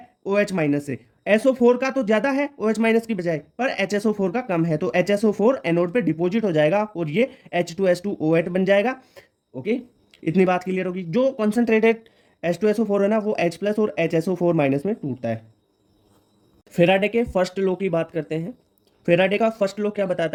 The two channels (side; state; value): both; identical; correlation 1.00